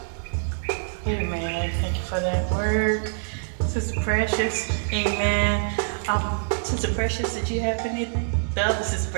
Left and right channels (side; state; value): left; silent; 59 dB below the other